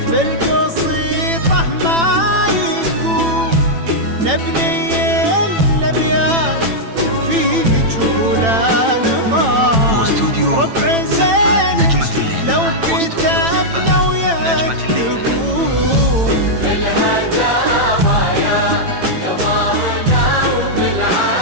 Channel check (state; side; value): late; left; 9.0 ms